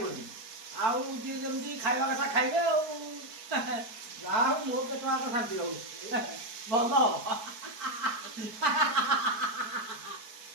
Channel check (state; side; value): late; left; 4.6 ms